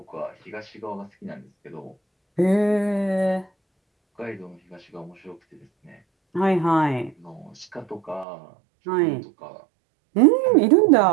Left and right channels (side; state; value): left; drops out; at 8.2 s